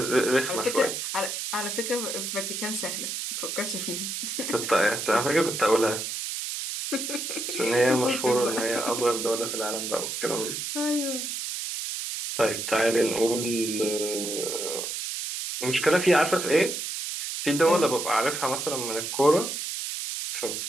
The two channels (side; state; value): right; noise; hiss, 4 dB below the sound